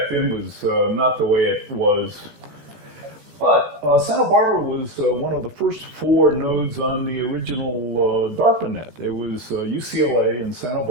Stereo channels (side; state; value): left; late; 16 ms